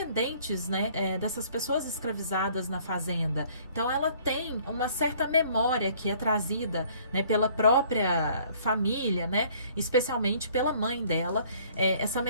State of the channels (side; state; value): both; inverted; correlation -0.57